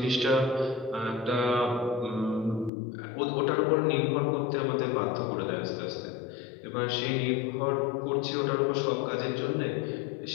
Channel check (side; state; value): right; drops out; at 2.7 s